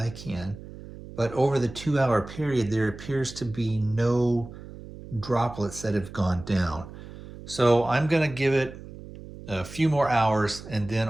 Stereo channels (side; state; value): right; noise; hum, 15 dB below the sound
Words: can, but over the 2-hour period, there appears to be no droplets that have gone down. So I'm going to give it a few more hours, and then